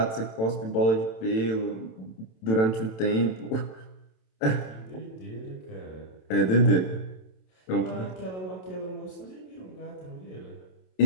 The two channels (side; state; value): right; late; 27 ms